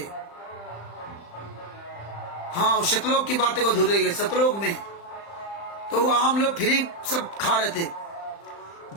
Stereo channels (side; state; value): right; late; 35 ms